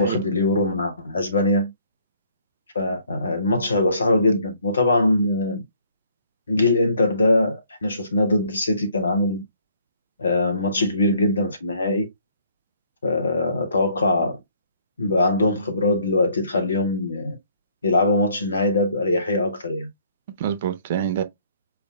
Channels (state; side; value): inverted; both; correlation -0.62